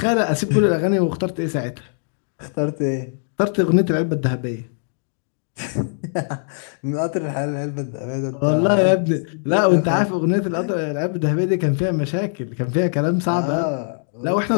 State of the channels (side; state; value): right; silent; 65 dB below the other